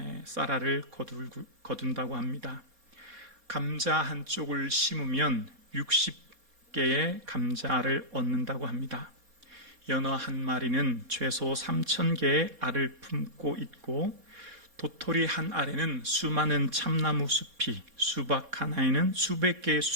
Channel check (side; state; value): left; late; 4.2 ms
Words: 쌀알을 거둔다고 합니다. 감자 한 쪽을 심으면 60개의 감자알을 얻는다고 합니다. 연어 한 마리는 최소 3,000개의 알을 품고 있고, 도토리 한 알에는 수많은 참나무 숲이, 수박 하나에는 수백 개의